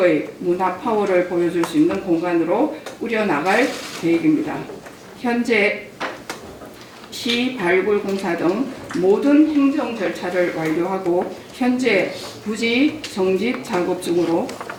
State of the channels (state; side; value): identical; both; correlation 1.00